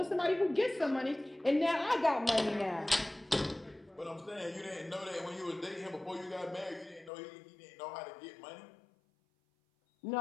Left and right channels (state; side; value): drops out; right; at 7.1 s